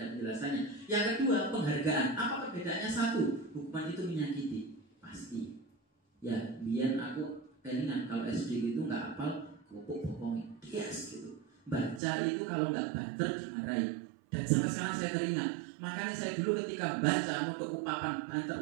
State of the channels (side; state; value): left; drops out; at 12.0 s